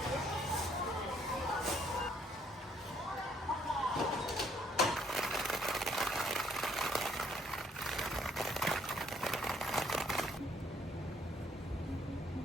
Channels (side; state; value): both; normal; correlation 0.66